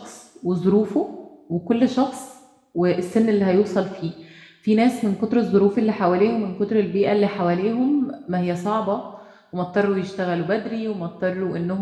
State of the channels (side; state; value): both; identical; correlation 1.00